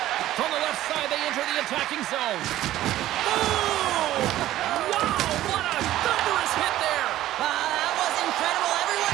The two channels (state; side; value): quieter; left; 14.1 dB